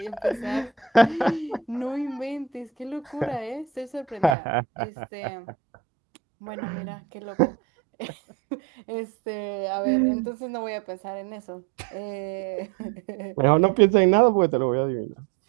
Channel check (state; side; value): drops out; left; at 4.4 s